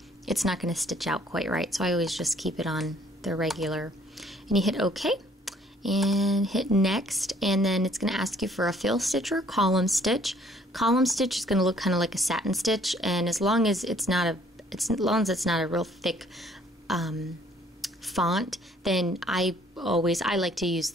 it's not going to stitch out quite right. So I always just keep it on the regular. And you hit OK and hit Next, and then it's going to ask you for a fill stitch or a column stitch. Column stitch is going to look kind of like a satin stitch, and as long as it's not a real thick font, then I like to use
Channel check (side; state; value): both; normal; correlation 0.61